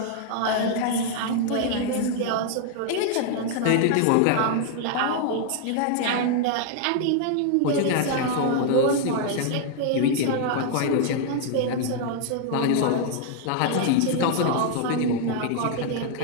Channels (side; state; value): both; different; correlation 0.00